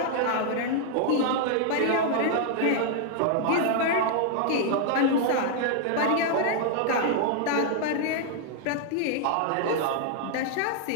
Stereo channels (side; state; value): both; different; correlation 0.00